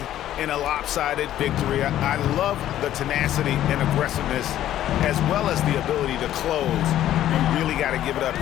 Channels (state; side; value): quieter; right; 12.4 dB